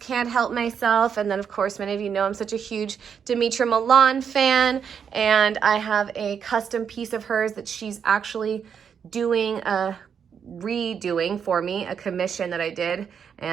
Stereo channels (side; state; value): left; quieter; 7.3 dB